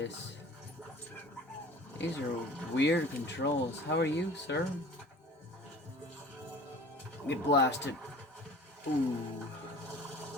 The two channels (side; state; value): both; normal; correlation 0.44